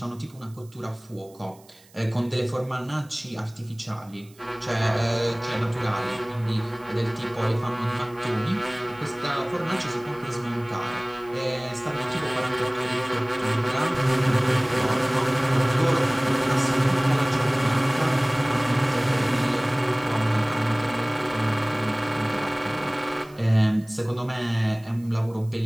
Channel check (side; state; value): right; noise; hiss, 28 dB below the sound